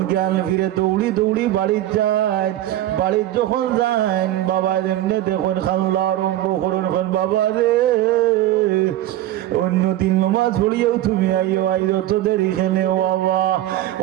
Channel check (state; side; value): quieter; left; 14.1 dB